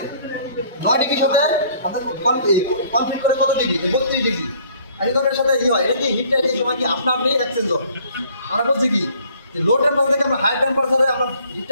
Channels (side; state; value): both; inverted; correlation -0.57